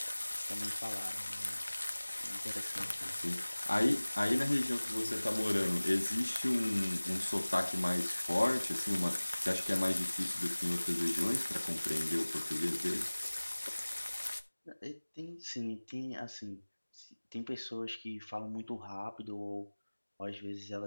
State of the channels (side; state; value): both; inverted; correlation -1.00